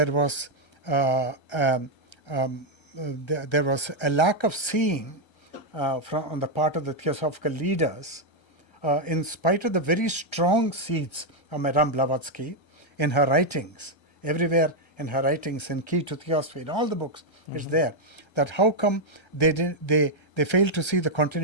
was there was a lack of seeing on the part of the Theosophical leaders, in spite of the very strong seeds of Madame Blavatsky in her writings, everywhere in her writings, in Key to Theosophy, in all the books, it's there. That how come they failed to see the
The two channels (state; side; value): late; right; 1.3 ms